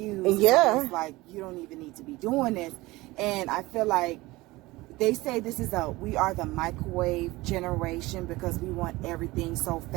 it's like you don't even need to be doing this. And I feel like they say we are the microwave generation because we want everything so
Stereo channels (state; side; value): quieter; left; 20.3 dB